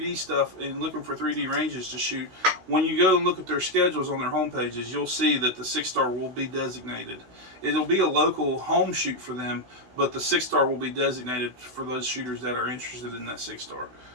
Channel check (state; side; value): late; left; 16 ms